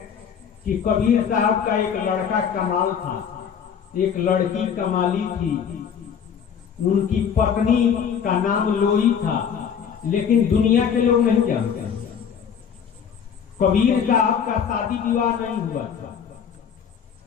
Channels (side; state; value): right; quieter; 7.5 dB